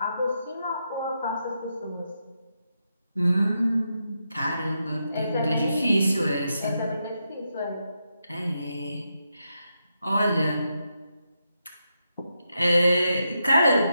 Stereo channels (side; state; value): both; inverted; correlation -0.84